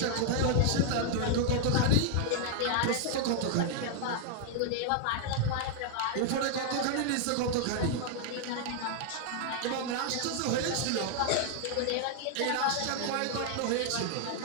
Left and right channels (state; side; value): different; both; correlation 0.00